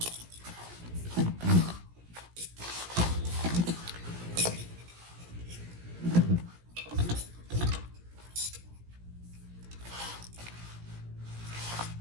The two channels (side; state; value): left; late; 17 ms